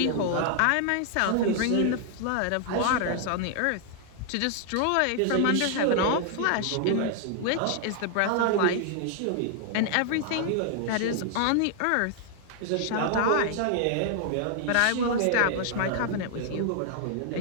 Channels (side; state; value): both; different; correlation 0.00